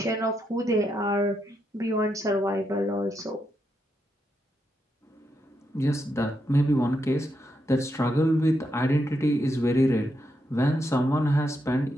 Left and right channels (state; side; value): normal; both; correlation 0.82